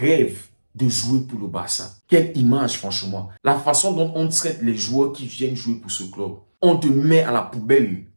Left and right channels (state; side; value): inverted; both; correlation -1.00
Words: de jouer pour le Barça. Quelle image, franchement. La façon dont on traite les joueurs qui viennent jouer pour ce club. On te met à la poubelle